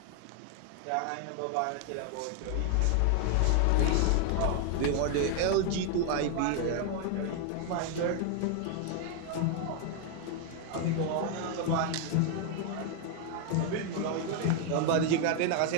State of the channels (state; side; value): different; both; correlation 0.00